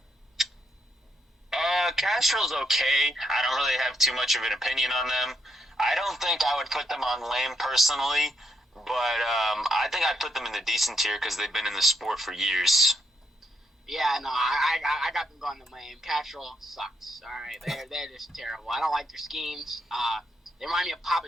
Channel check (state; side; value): normal; both; correlation 0.77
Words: Castrol's okay. I don't really have too much of an opinion on them. I don't think I would put them on lame personally, but I think I'd put them in the decent tier because they've been in the sport for years. Yeah, no, I got them going to lame. Castrol sucks. All right, they're just terrible. I don't like their schemes. They remind me of Papa